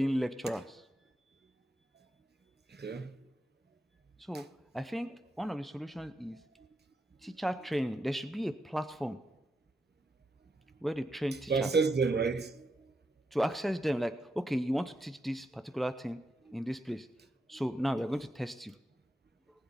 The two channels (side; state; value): both; normal; correlation 0.84